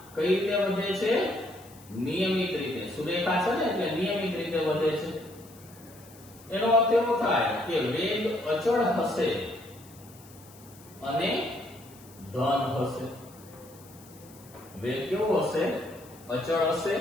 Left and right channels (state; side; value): noise; left; hiss, 23 dB below the sound